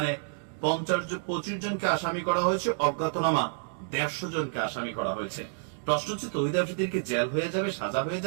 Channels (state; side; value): silent; left; digital silence